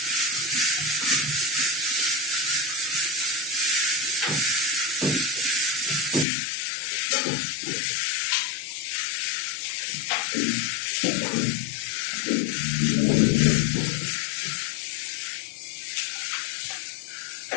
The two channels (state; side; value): drops out; right; at 6.2 s